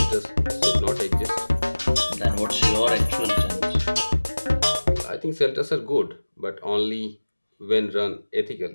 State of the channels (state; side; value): inverted; both; correlation -1.00